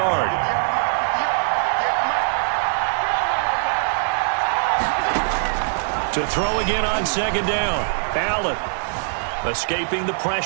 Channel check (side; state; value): left; silent; digital silence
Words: To throw again on second down. Allen escaping the